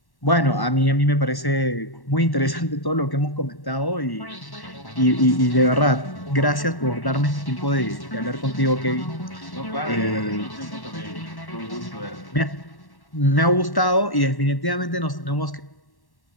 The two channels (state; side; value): late; right; 1.1 ms